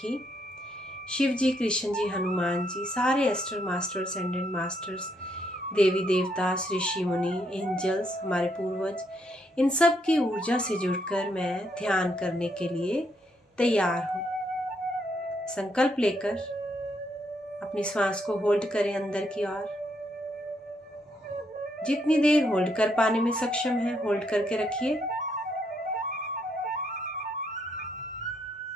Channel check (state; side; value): normal; both; correlation 0.75